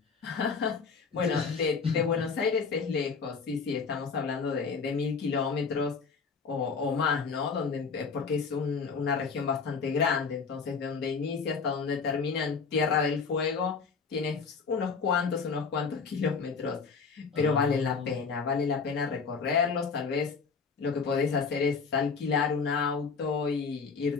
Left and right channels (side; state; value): right; quieter; 5.3 dB